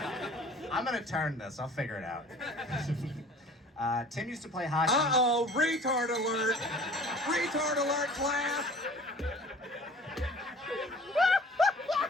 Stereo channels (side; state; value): both; normal; correlation 0.47